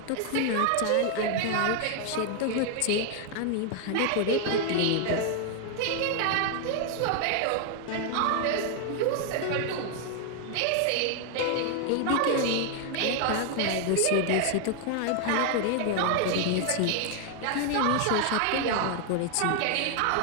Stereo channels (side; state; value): both; different; correlation 0.00